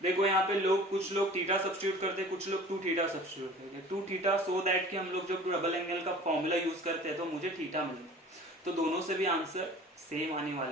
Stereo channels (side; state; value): both; normal; correlation 0.44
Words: देखो यहाँ पे लोग, कुछ लोग थीटा सब्स्टिट्यूट करते हैं, कुछ लोग 2 थीटा सब्स्टिट्यूट करते हैं। 2 थीटा सो दैट कि हम लोग जब डबल एंगल का फॉर्मूला यूज करते हैं तो मुझे थीटा मिलता है, तो दोनों से भी आंसर सेम आने